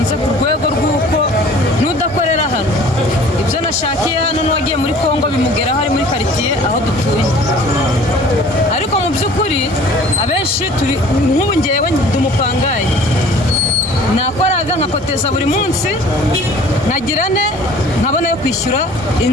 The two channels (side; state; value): both; normal; correlation 0.49